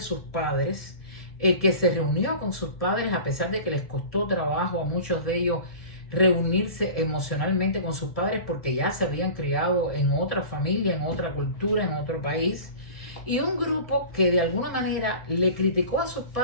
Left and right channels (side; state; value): right; late; 1.7 ms